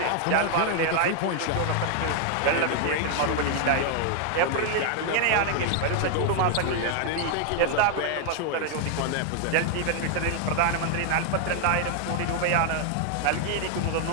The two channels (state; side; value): different; both; correlation 0.00